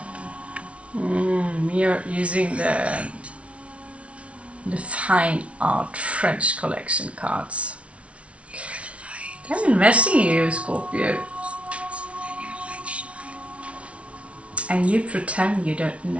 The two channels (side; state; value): left; late; 0.062 ms